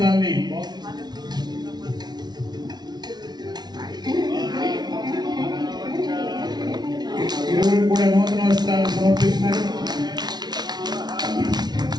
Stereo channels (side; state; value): left; late; 0.20 ms